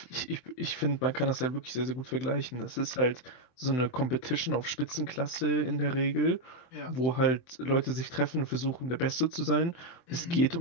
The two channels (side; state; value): right; late; 24 ms